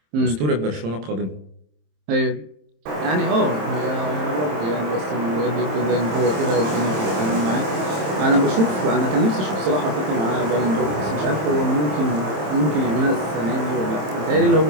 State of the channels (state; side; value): late; left; 27 ms